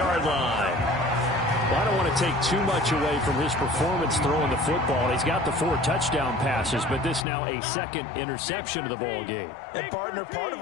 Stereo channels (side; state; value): right; drops out; at 7.2 s